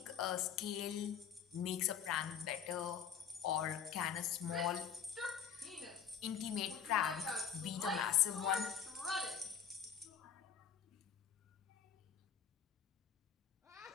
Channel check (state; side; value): quieter; right; 8.0 dB